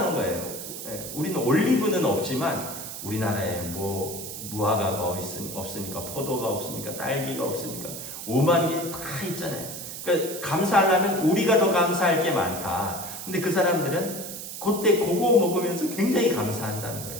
거예요. 우리는 올리브는 없지만 우리나라에 뭐 무화과가 없습니까? 포도가 없습니까? 딸기가 없습니까? 5만 개 다 있잖아요. 그러니까 감사하려면 우리가 더 감사할 게 많다. 근데 그 사람들은 그때 그거 먹으면서 굉장히 감사한다는 거예요.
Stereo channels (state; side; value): noise; right; hiss, 9 dB below the sound